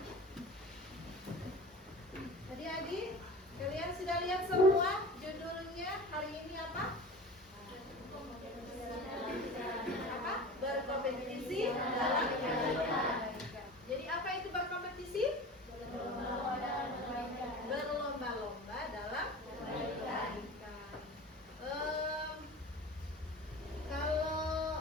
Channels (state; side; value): normal; both; correlation 0.36